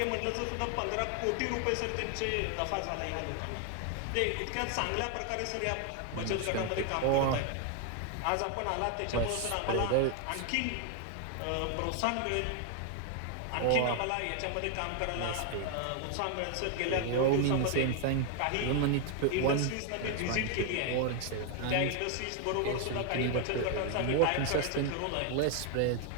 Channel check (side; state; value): both; different; correlation 0.00